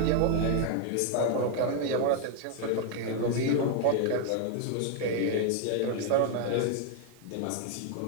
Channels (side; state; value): both; different; correlation 0.00